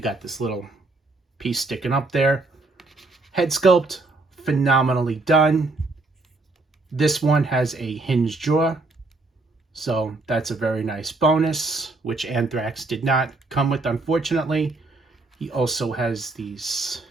got this little piece sticking up there. Head sculpt, phenomenally done. This one has a hinged jaw, so that's a very nice bonus, which Antrax did not come with, unfortunately. He also has these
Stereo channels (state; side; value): quieter; left; 3.3 dB